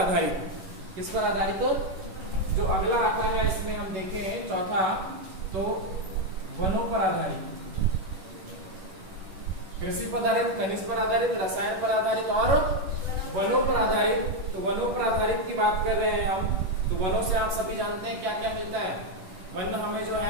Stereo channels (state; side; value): late; left; 10 ms